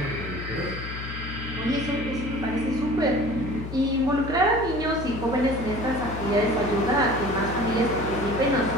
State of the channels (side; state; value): left; noise; hum, 8 dB below the sound